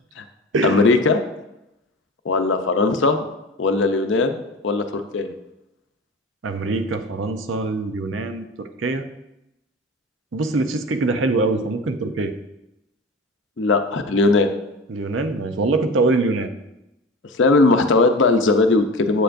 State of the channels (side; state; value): both; normal; correlation 0.32